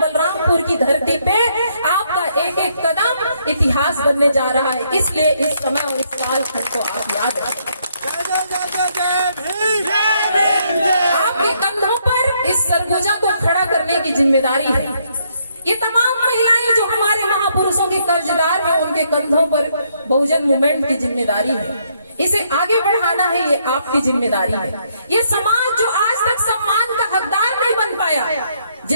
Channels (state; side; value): inverted; both; correlation -0.72